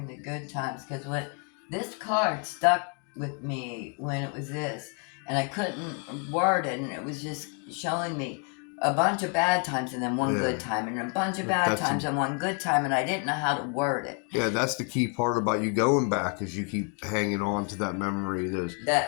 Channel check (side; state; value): right; quieter; 37.7 dB